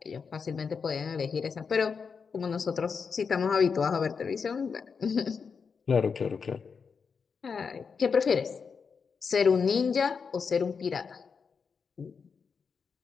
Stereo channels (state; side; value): quieter; right; 5.7 dB